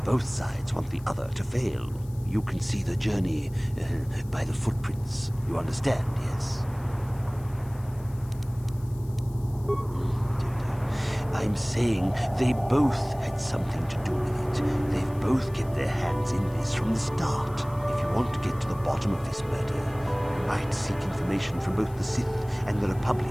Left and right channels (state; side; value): noise; left; hiss, 25 dB below the sound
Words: both sides want the other to fail. You can see the journey by the footprints. You understand, yes? I'm saying they both had something to do with it. They've both kept their hands in this from the start. If you want to get to the bottom of this murder, you might seek information from both the Sith and the